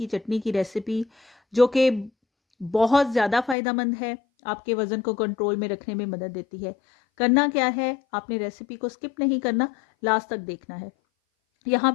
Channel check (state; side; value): drops out; right; at 3.6 s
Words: चटनी की रेसिपी, जो कि बहुत ज़्यादा फ़ायदेमंद है, आपके वज़न को कंट्रोल में रखने में मदद देती है। करना क्या है, आपने रेसिपी को स्किप नहीं करना, लास्ट तक देखना है। यहाँ